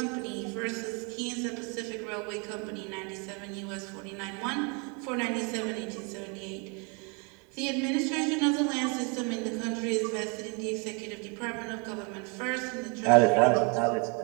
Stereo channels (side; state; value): left; quieter; 34.0 dB